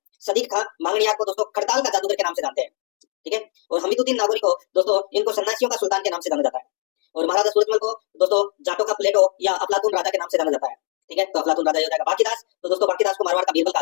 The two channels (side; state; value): right; quieter; 39.9 dB